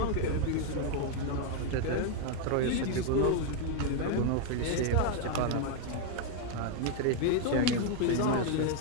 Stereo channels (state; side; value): different; both; correlation 0.01